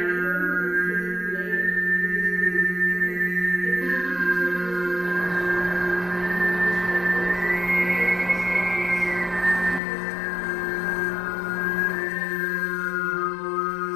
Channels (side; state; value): right; drops out; at 9.8 s